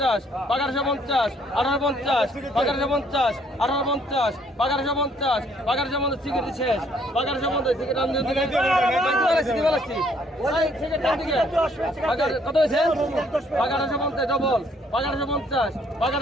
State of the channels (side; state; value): both; normal; correlation 0.65